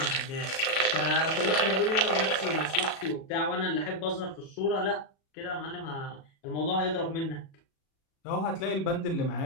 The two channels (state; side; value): late; right; 37 ms